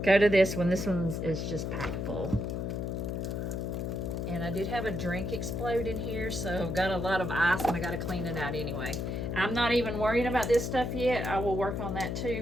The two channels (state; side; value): noise; left; hum, 2 dB below the sound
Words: go to this one. This one is just packed full. And I did have a drink explode in here, so I've got a lot of ice and I got to clean it out anyway. I'm not even worrying about this stuff yet. I will work on that too,